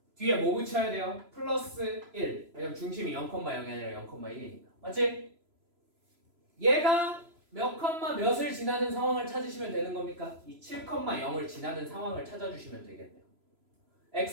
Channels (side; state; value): left; late; 3.0 ms